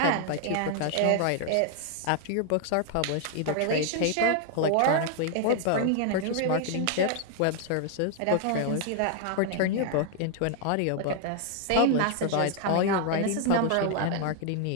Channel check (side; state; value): both; different; correlation 0.00